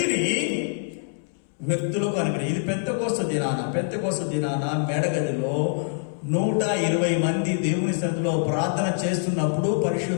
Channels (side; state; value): right; silent; 62 dB below the other